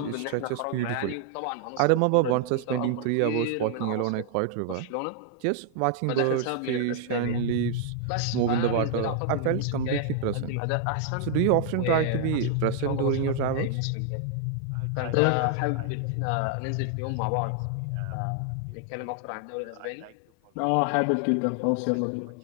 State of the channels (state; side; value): different; both; correlation 0.00